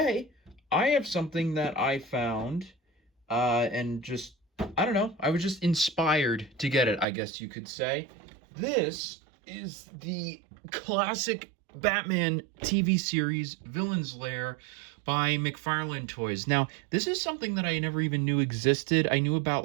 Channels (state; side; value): drops out; left; at 7.1 s